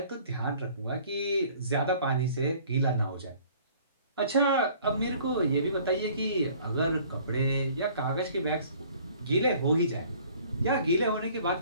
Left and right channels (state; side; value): inverted; both; correlation -0.54